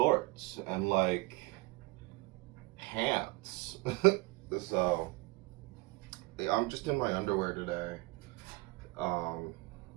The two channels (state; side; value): quieter; left; 24.1 dB